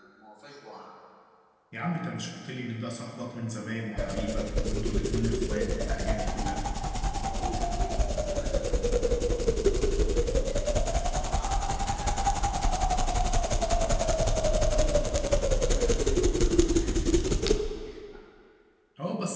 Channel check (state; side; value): identical; both; correlation 1.00